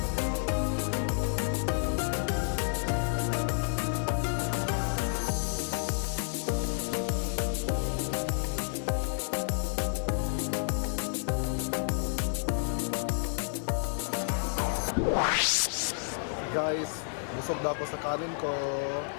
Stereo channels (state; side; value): silent; right; digital silence